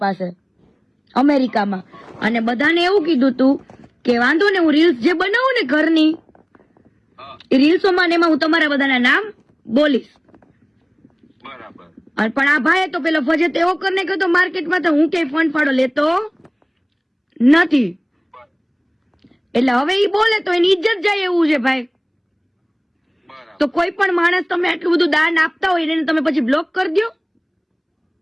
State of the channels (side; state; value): both; identical; correlation 1.00